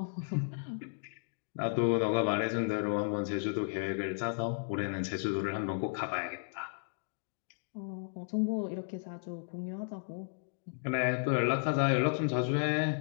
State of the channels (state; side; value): silent; right; digital silence